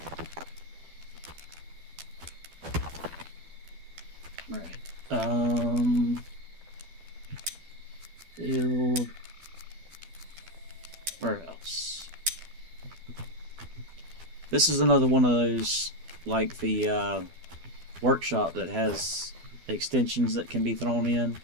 Right. Build warehouse. This is another one of those, like the workshop that has extensions that can be thrown in.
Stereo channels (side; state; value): left; late; 12 ms